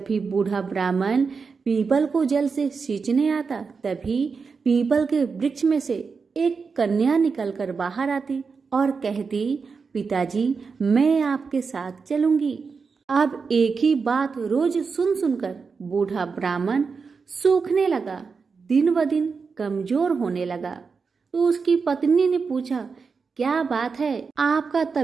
भी बूढ़ा ब्राह्मण पीपल को जल से सींचने आता तभी पीपल के वृक्ष में से एक कन्या निकलकर बाहर आती और कहती, पिताजी मैं आपके साथ चलूंगी। अब एक ही बात रोज सुन सुनकर बूढ़ा ब्राह्मण सूखने लगा, दिन ब दिन कमजोर होने लगा। तो उसकी पत्नी ने पूछा, क्या बात है, आपका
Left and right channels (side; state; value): left; quieter; 5.1 dB